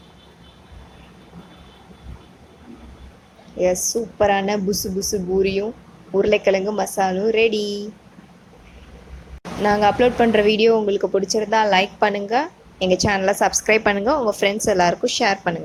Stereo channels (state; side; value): identical; both; correlation 1.00